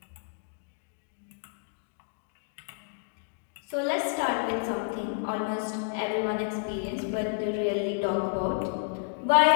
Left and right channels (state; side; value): silent; right; digital silence